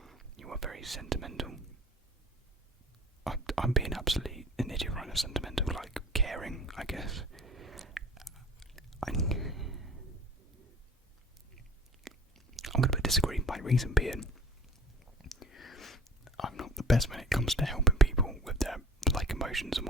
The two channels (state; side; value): normal; both; correlation 0.45